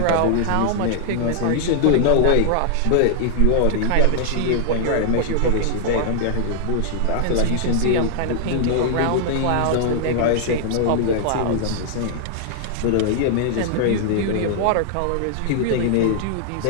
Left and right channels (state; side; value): different; both; correlation -0.01